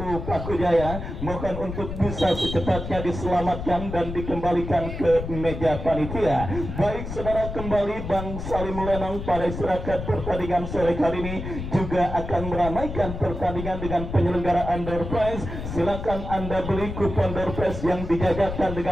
Pakujaya, mohon untuk bisa secepatnya diselamatkan dan dikembalikan ke meja panitia. Baik saudara, kembali Bang Salim Lenong pada istirahat pertandingan sore kali ini juga akan meramaikan pertandingan dengan penyelenggaraan door prize. Silakan Anda beli kupon door prize yang dijajakan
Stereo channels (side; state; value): left; noise; rumble, 7 dB below the sound